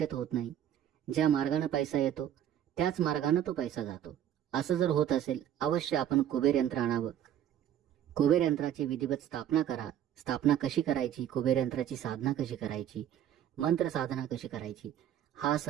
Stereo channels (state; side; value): quieter; left; 10.6 dB